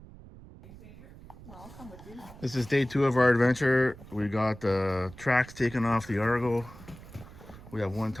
I'll come with you. This is day two of our adventure. We got the tracks taken off the Argo. We have one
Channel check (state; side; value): noise; right; rumble, 18 dB below the sound